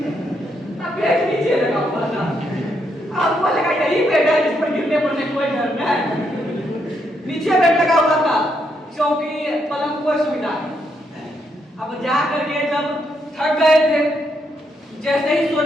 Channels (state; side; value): normal; both; correlation 0.77